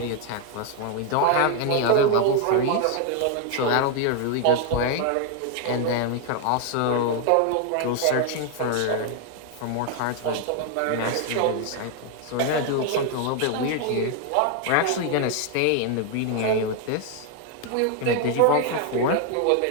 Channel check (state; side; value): different; both; correlation 0.00